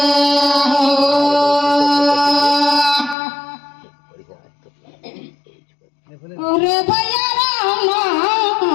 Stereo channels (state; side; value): drops out; right; at 3.2 s